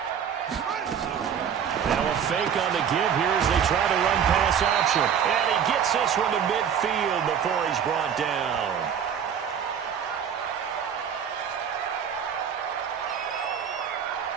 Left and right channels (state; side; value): quieter; left; 8.1 dB